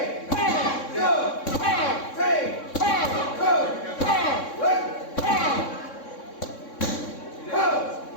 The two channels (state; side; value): late; right; 3.6 ms